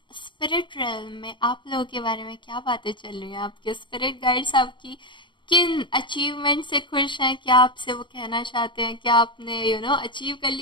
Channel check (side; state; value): right; late; 0.23 ms